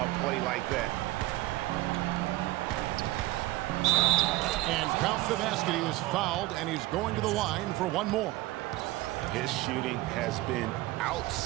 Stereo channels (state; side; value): quieter; left; 18.3 dB